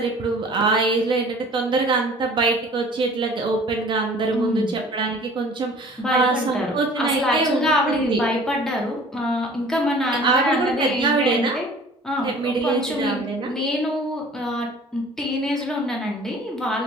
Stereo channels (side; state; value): both; normal; correlation 0.48